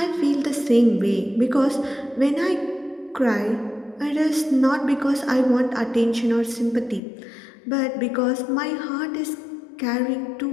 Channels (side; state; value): right; drops out; at 7.0 s